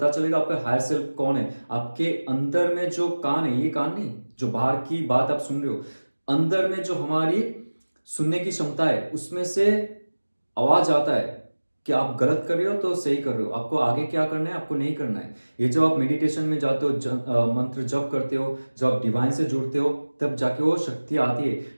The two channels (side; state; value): both; inverted; correlation -1.00